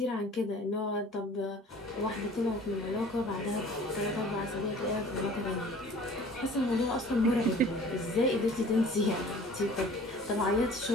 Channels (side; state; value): both; normal; correlation 0.48